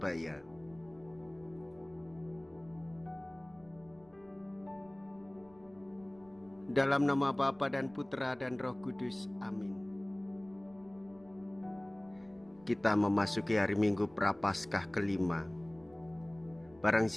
Dalam nama Bapa dan Putra dan Roh Kudus, amin. Kita memasuki hari Minggu Prapaskah kelima. Barang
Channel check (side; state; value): right; noise; rumble, 27 dB below the sound